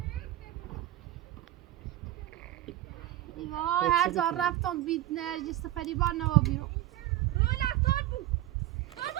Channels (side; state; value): left; quieter; 14.7 dB